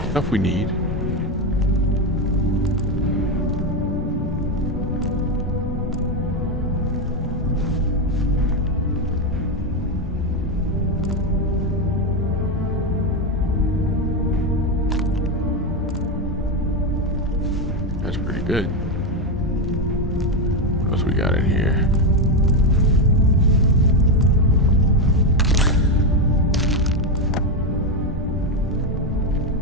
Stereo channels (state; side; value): normal; both; correlation 0.09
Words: Stuff we need. That's pretty good. What else we got in here?